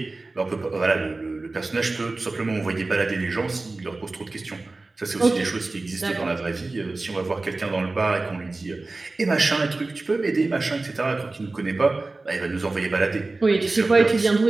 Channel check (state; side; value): quieter; left; 3.3 dB